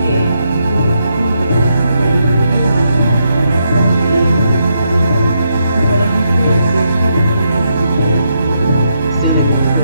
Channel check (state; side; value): inverted; both; correlation -0.80